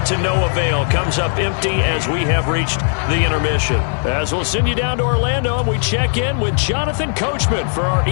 to no avail. Comes up empty as we have reached the intermission. As we'll send you down to Orlando, and we check in with Jonathan Coachman for our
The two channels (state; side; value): silent; right; 57 dB below the other